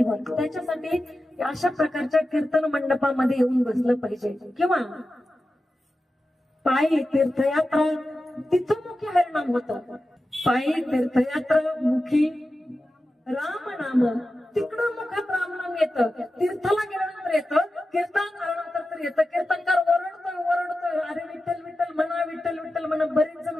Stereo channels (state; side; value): normal; both; correlation 0.93